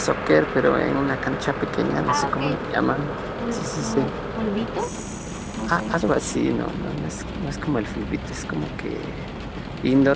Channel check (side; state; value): both; identical; correlation 1.00